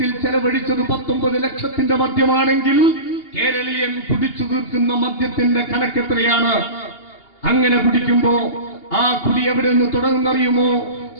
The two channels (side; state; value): right; late; 2.8 ms